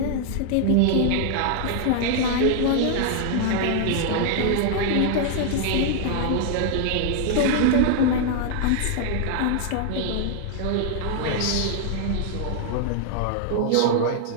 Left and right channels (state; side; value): different; both; correlation 0.00